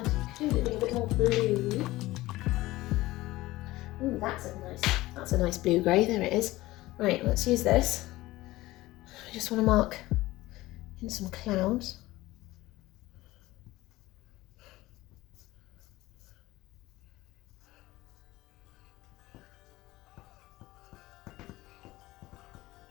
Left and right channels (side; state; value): right; quieter; 18.2 dB